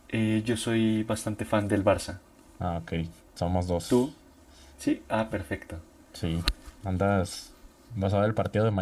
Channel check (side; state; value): both; identical; correlation 1.00